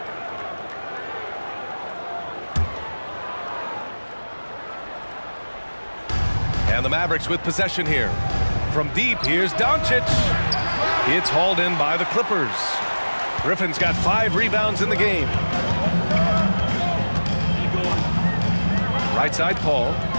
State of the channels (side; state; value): both; inverted; correlation -1.00